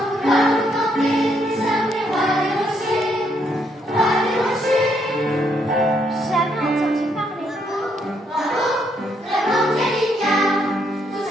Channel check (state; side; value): normal; both; correlation 0.74